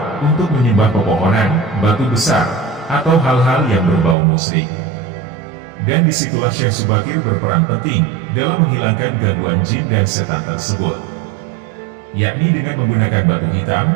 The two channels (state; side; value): drops out; left; at 4.2 s